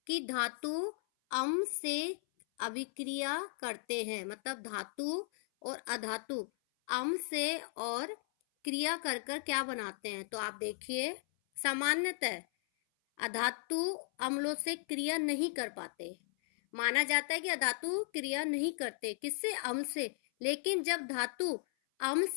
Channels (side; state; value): right; silent; 54 dB below the other